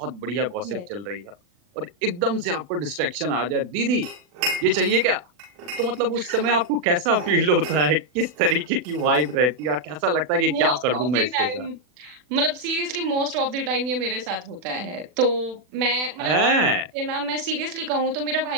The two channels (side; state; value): left; late; 40 ms